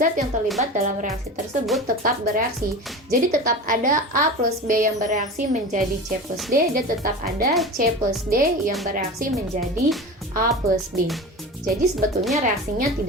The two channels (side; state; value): both; normal; correlation 0.31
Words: yang terlibat dalam reaksi tersebut tetap bereaksi. Jadi tetap ada A plus B yang bereaksi menjadi C plus D, dan tetap ada C plus D yang bereaksi menjadi A plus B. Jadi sebetulnya reaksinya